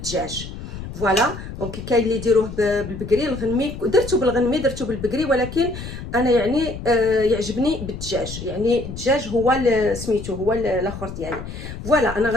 فوالا دونك كاين اللي يديروه بالبقري الغنمي، درتو بالغنمي درتو بالبقري، ولكن انا يعني يعجبني بالدجاج، يعني الدجاج هو سميتو هو الاخر ديالي. فوالا انا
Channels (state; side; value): noise; left; rumble, 10 dB below the sound